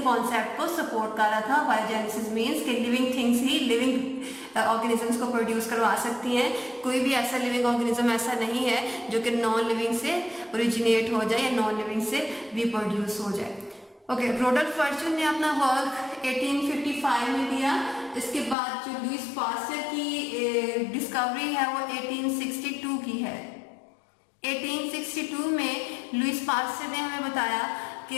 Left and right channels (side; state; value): right; drops out; at 18.6 s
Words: कॉन्सेप्ट को सपोर्ट कर रहा था। बायोजेनेसिस मीन्स कि लिविंग थिंग्स ही लिविंग ऑर्गेनिजम्स को प्रोड्यूस करवा सकती हैं। कोई भी ऐसा लिविंग ऑर्गेनिज्म ऐसा नहीं है जो कि नॉन लिविंग से ओरिजिनेट हो जाए या नॉन लिविंग से रिप्रोड्यूस हो जाए। ओके, रोडल्फ वर्चू ने अपना वर्क 1855 में दिया। इसके बाद जो लुईस पास्चर की डिस्कवरी है वो 1862 की है। 1862 में लुईस पास्चर ने हमें बताया